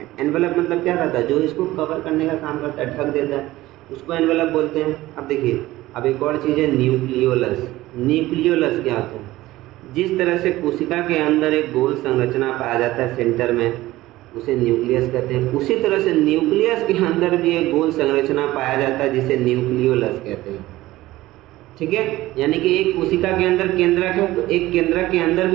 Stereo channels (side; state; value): left; quieter; 17.1 dB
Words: एनवेलप मतलब क्या रहता है? जो इसको कवर करने का काम करता है, ढक देता है, उसको एनवेलप बोलते हैं। अब देखिए अब एक और चीज़ है न्यूक्लियोलस। न्यूक्लियोलस क्या होता है? जिस तरह से कोशिका के अंदर एक गोल संरचना पाया जाता है सेंटर में, उसे न्यूक्लियस कहते हैं। उसी तरह से न्यूक्लियस के अंदर भी एक गोल संरचना पाया जाता है जिसे न्यूक्लियोलस कहते हैं। ठीक है, यानी कि एक कोशिका के अंदर केंद्रक है तो एक केंद्रक के अंदर